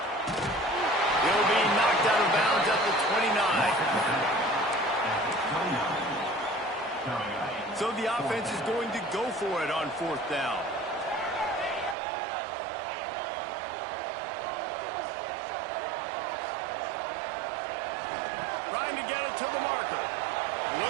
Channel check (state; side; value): drops out; left; at 12.0 s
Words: He'll be knocked out of bounds at the 29. So the offense is going to go for it on 4th down. Trying to get it to the marker.